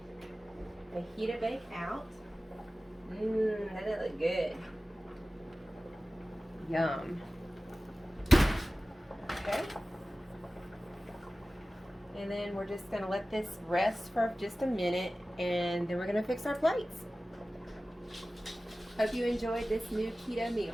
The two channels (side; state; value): both; normal; correlation 0.96